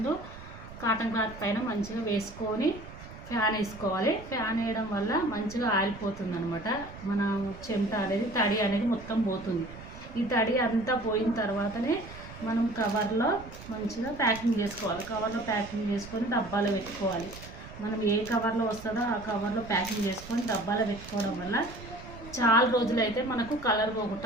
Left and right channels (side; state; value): right; noise; rumble, 15 dB below the sound